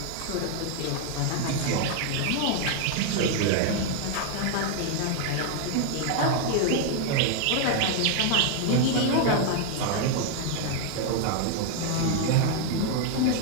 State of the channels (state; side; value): different; both; correlation 0.00